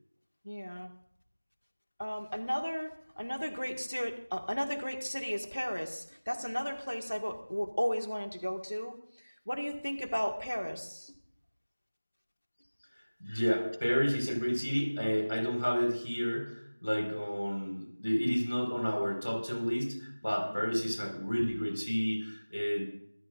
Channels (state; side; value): inverted; both; correlation -1.00